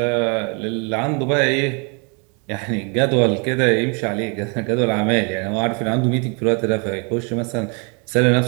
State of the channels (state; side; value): quieter; left; 35.0 dB